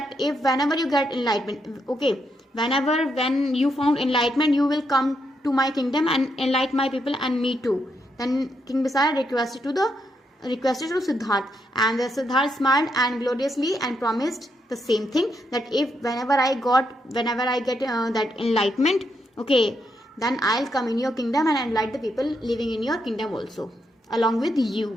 if whenever you get enlightenment, okay, when you found enlightenment you will come to my kingdom and enlighten my people and me too. Then King Bisara requested to Siddharth, and the Siddharth smiled and gloriously and promised the same thing, that if whenever I get that enlightenment, okay, then I'll come in your kingdom and enlighten the people living in your kingdom also along with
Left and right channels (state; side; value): normal; both; correlation 0.80